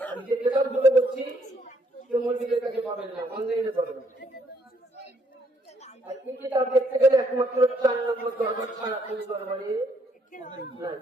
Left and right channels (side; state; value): both; normal; correlation 0.69